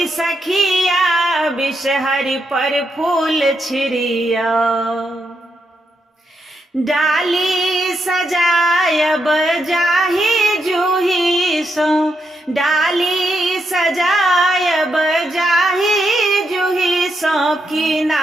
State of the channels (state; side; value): normal; both; correlation 0.81